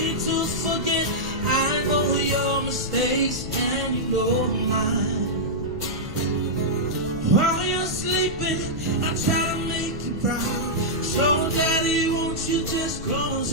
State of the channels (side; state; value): left; noise; rumble, 9 dB below the sound